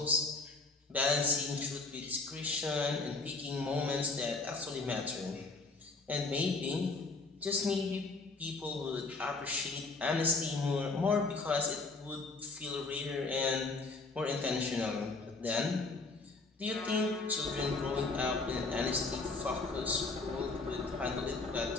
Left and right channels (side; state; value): right; quieter; 3.7 dB